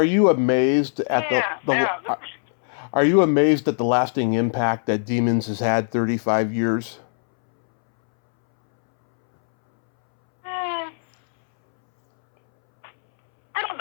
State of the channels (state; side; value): silent; right; 65 dB below the other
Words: you amazed at Are you amazed at the lasting impact that Demons has had 35 years? I don't